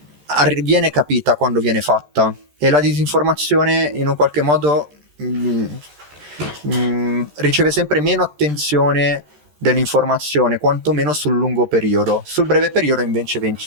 viene capita quando viene fatta, e la disinformazione in un qualche modo riceve sempre meno attenzione dell'informazione, quantomeno sul lungo periodo. Sul breve periodo invece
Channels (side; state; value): left; late; 13 ms